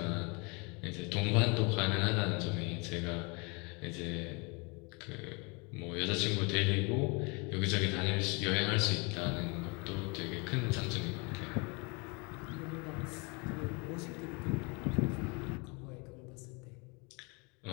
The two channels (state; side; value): quieter; right; 30.7 dB